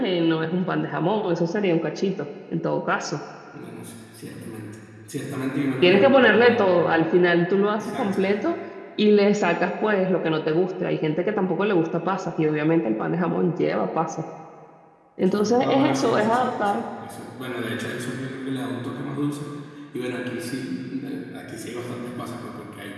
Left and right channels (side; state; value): both; identical; correlation 1.00